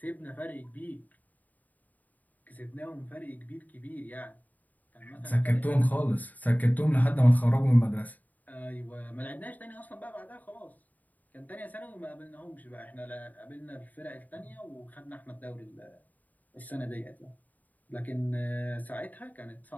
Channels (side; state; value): right; late; 0.079 ms